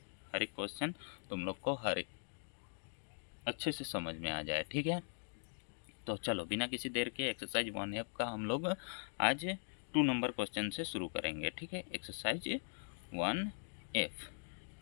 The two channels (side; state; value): right; silent; digital silence